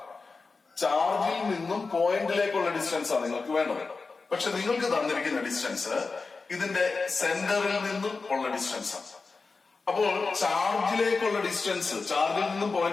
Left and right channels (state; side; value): quieter; right; 4.2 dB